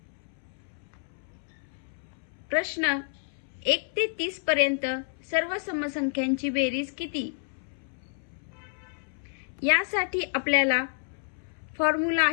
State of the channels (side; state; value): right; silent; 58 dB below the other